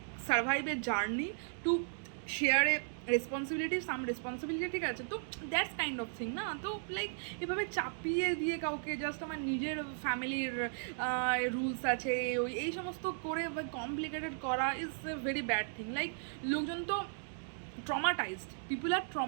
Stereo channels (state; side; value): silent; left; digital silence